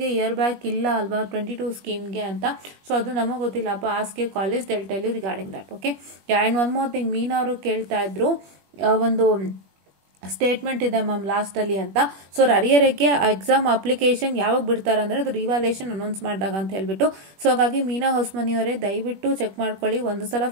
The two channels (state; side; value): late; left; 21 ms